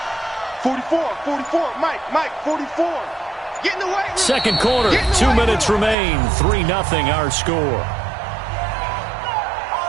44, Mike, 44. Get in the way. Second quarter, 2 minutes remain. 3-0 our score.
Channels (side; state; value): left; drops out; at 6.0 s